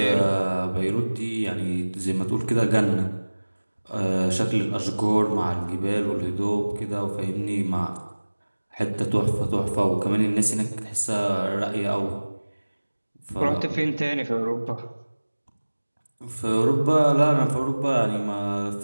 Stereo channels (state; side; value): inverted; both; correlation -1.00